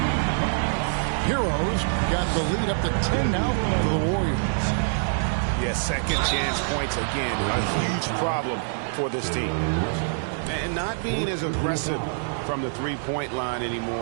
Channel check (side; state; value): left; silent; digital silence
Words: Heroes got the lead up to 10 now for the Warriors. Yeah, second chance points again. A huge problem for this team. And not being as aggressive from the three-point line